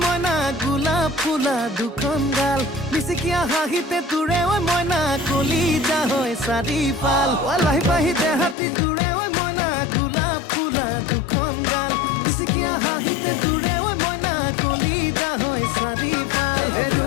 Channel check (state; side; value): drops out; right; at 8.6 s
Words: মইনা গোলাপ ফুলা দুখন গাল মিচিকিয়া হাঁহিতে তোৰে ঐ মইনা কলিজা হয় চাৰিফাল লাহি পাহি দেহাতি তোৰে ঐ মইনা গোলাপ ফুলা দুখন গাল মিচিকিয়া হাঁহিতে তোৰে ঐ মইনা কলিজা হয় চাৰিফাল